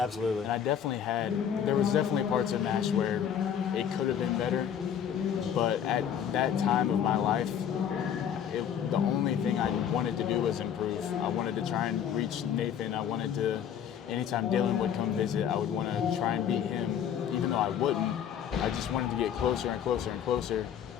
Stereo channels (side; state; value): right; quieter; 8.9 dB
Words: And there was definitely parts of MASH where it could have been better, but at that time of my life, the only thing I wanted to do was improve. I wanted to try and reach Nathan. I wanted to, anytime Dylan would come visit, I would want to try and beat him, even though I wouldn't. I just wanted to get closer and closer and closer,